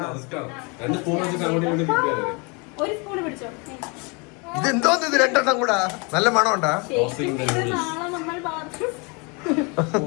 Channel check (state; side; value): quieter; right; 30.9 dB